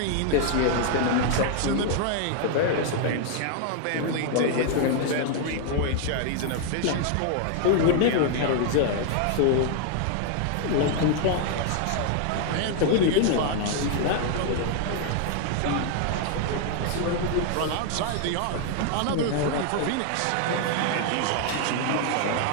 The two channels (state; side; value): different; both; correlation 0.00